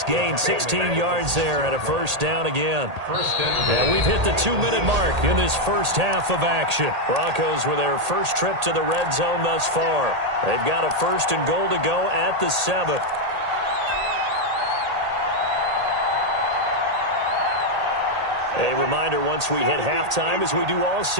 gain, 16 yards there and a first down again. And we've hit the 2-minute mark in this first half of action. Broncos with their first trip to the red zone thus far. They've got a 1st and goal to go at the 7. A reminder, once we hit halftime, as we do all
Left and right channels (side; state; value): left; late; 1.8 ms